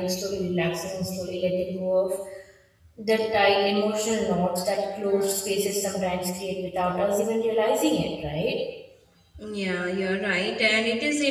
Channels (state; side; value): identical; both; correlation 1.00